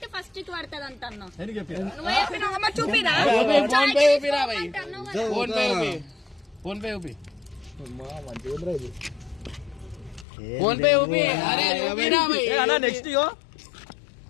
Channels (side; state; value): right; drops out; at 10.2 s